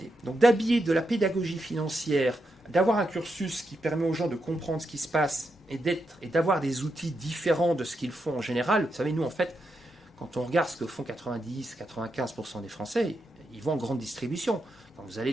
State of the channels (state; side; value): normal; both; correlation 0.84